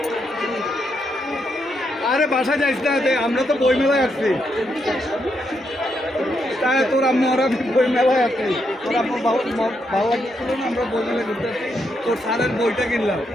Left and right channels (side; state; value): both; normal; correlation 0.79